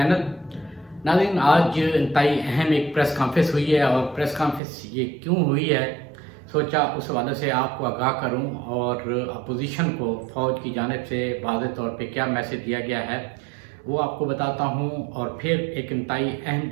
नाज़रीन, आज इंतहाई अहम एक प्रेस कॉन्फ्रेंस हुई है और प्रेस कॉन्फ्रेंस ये क्यों हुई है, सोचा उस हवाले से आपको आगाह करूं और अपोजिशन को फ़ौज की जानिब से वाज़ेह तौर पे क्या मैसेज दिया गया है वो आपको बताता हूं। और फिर एक इंतहाई अहम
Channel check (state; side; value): drops out; left; at 4.6 s